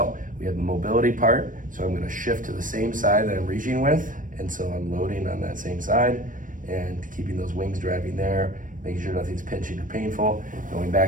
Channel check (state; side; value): late; left; 0.38 ms